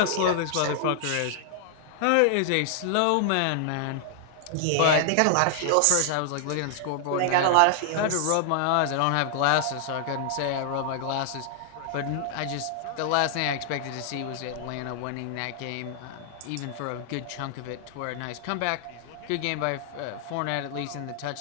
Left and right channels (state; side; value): different; both; correlation 0.00